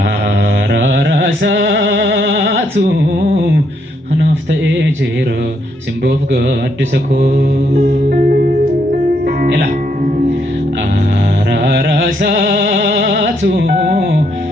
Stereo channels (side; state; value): both; normal; correlation 0.74